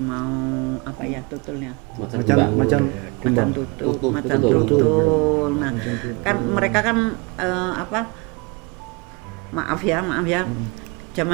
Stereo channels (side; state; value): left; quieter; 28.9 dB